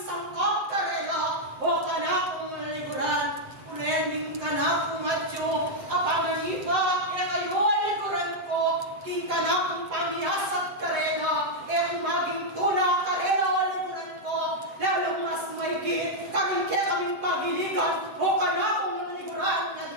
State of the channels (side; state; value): left; late; 7.8 ms